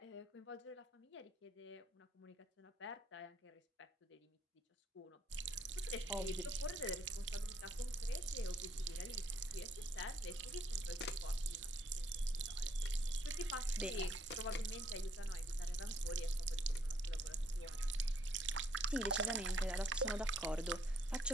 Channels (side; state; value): both; normal; correlation 0.68